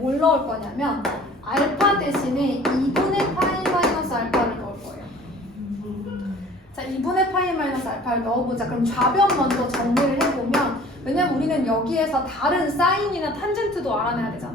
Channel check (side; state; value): both; normal; correlation 0.49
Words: 넣을 거냐면 알파 대신에 2분의 파이 마이너스 알파를 넣을 거예요. 자, 2분의 파이 마이너스 알파를 넣어보자. 그럼 좌변 먼저 정리를 해보면 왜냐면 우리는 여기에서 다른 사인이나 탄젠트도 알아내야